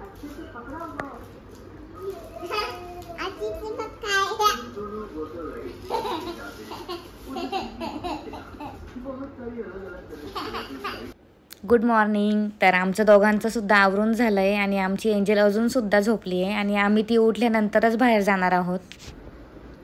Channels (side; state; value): both; identical; correlation 1.00